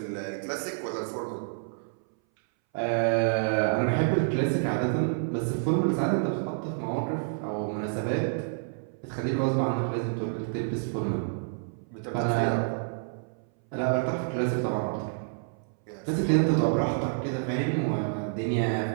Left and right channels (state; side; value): silent; left; 59 dB below the other